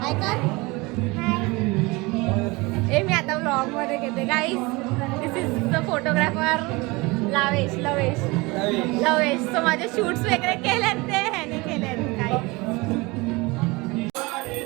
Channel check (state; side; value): quieter; left; 24.1 dB